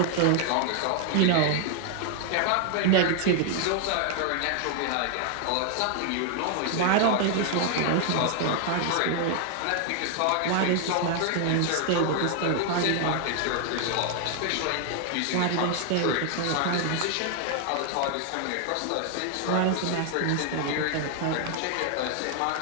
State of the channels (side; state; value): both; different; correlation 0.00